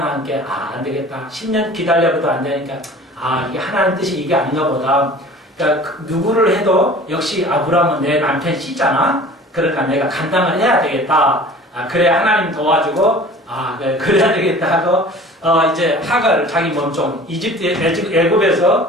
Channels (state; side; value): normal; both; correlation 0.44